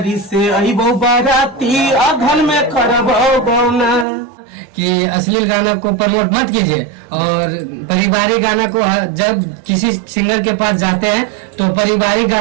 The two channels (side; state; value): left; drops out; at 4.0 s